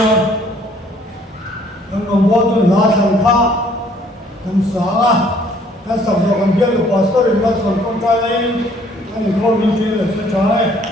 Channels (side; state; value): both; normal; correlation 0.60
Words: anh còn bao tôi lá thằng khác thằng sáng à cái sập rồi còn biết được pastor in mắt còn con trai này anh không biết chuyện là sẽ trái